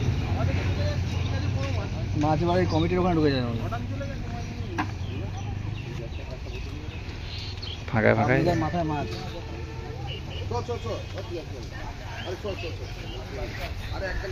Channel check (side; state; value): both; identical; correlation 1.00